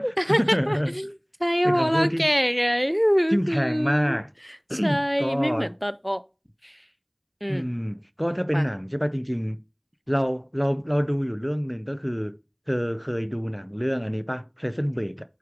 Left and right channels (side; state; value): both; identical; correlation 1.00